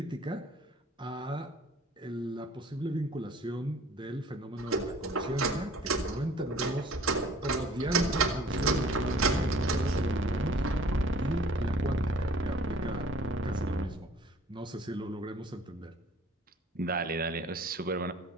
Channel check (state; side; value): normal; both; correlation 0.52